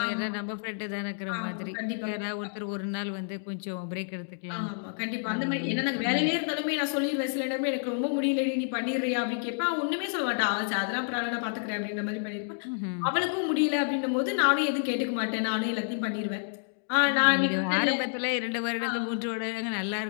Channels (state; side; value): silent; right; digital silence